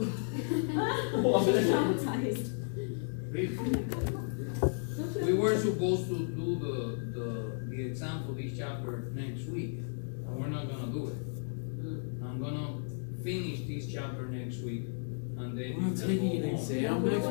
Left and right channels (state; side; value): silent; right; digital silence